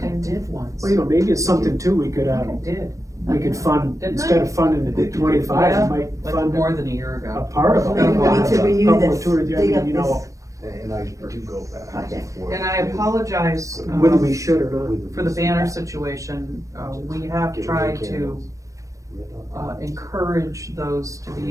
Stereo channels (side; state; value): left; late; 0.16 ms